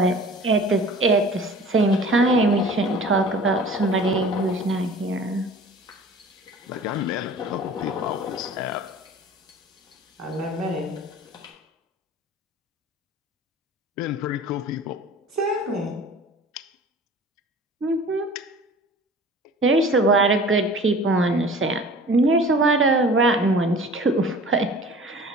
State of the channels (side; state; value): both; normal; correlation 0.44